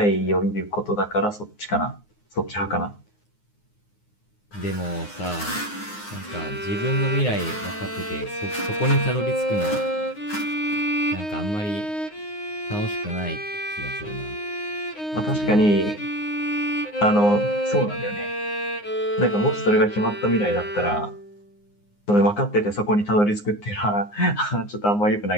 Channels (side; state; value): right; late; 9.7 ms